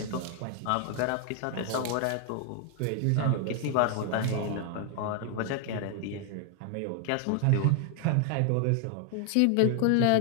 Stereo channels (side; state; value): both; different; correlation 0.00